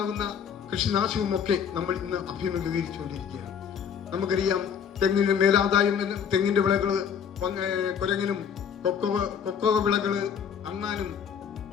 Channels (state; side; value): quieter; right; 7.7 dB